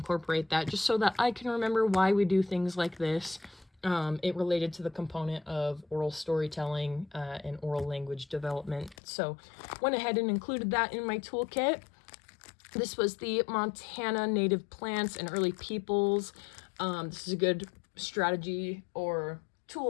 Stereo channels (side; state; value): right; drops out; at 9.0 s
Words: that just so that I can remember why we do things like this. It related to the component of oral storytelling and oral language development. So went ahead and included that in my toolkit. This was the Montana Native Plants and Early Peoples. This is a good strategy or